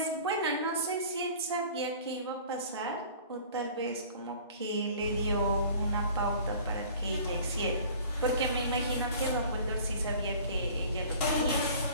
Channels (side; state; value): both; inverted; correlation -0.46